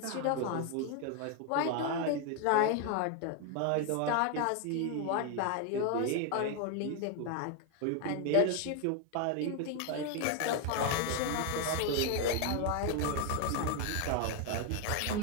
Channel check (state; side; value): different; both; correlation 0.01